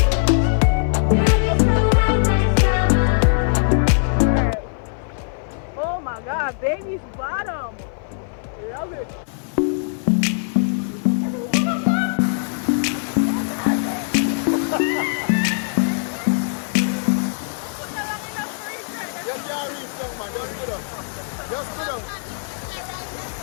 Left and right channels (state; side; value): silent; right; 56 dB below the other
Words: Oh my God, baby's bottom. Love it. Just can't reach down, man. Just sit down. Just sit down.